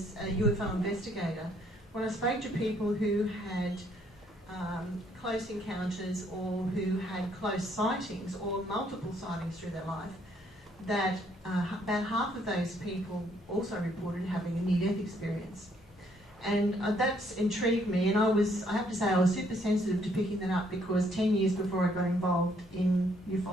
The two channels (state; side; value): normal; both; correlation 0.68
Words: a UFO investigator, when I spoke to people who had close encounters or who had close sightings or multiple sightings through their life, that about half of those people also reported having a near-death experience. And that's intrigued me, and I have to say I was super sensitive to picking that up, because 10 years before I got involved in